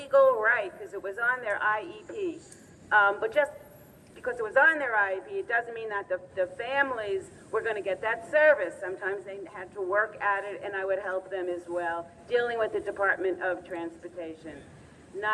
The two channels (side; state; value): both; identical; correlation 1.00